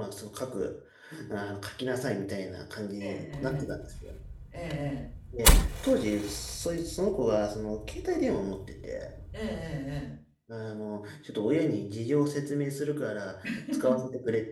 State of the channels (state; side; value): identical; both; correlation 1.00